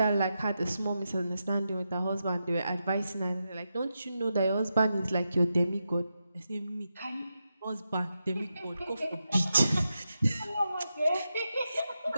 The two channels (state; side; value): inverted; both; correlation -0.87